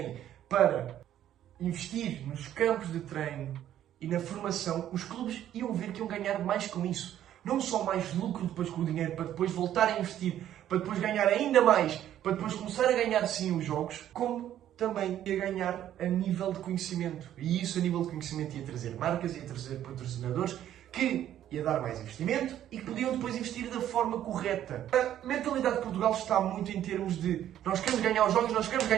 para investir nos campos de treino e na formação, os clubes iam ver que iam ganhar mais com isso. Não só mais lucro depois com o dinheiro, para depois voltar a investir, para depois ganhar ainda mais, para depois começar a ganhar sim os jogos, como também ia ganhar a nível de conhecimento. E isso a nível de conhecimento ia trazer marcas, ia trazer patrocinadores, que ia dar mais investimento e que podiam depois investir da forma correta. A mentalidade de Portugal está muito em termos de nós queremos ganhar os jogos, nós queremos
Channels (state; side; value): quieter; left; 11.4 dB